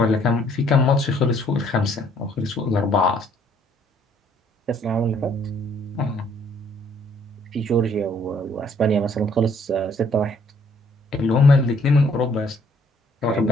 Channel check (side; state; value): both; normal; correlation 0.63